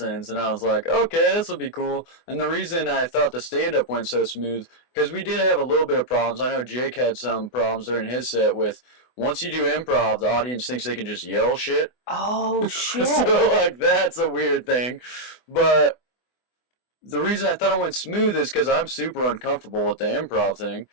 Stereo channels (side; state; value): right; late; 24 ms